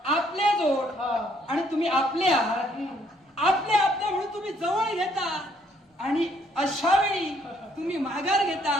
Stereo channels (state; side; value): normal; both; correlation 0.67